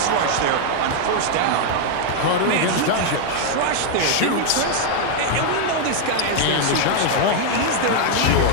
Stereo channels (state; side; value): different; both; correlation 0.00